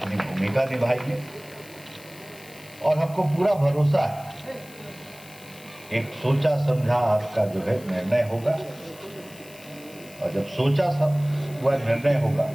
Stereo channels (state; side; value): noise; left; hiss, 21 dB below the sound